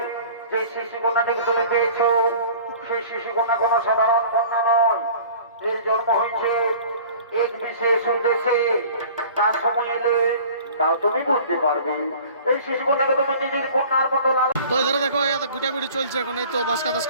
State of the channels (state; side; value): inverted; both; correlation -0.45